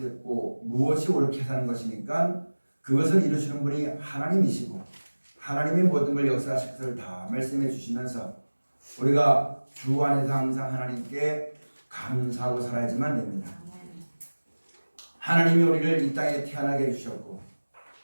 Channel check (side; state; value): both; inverted; correlation -1.00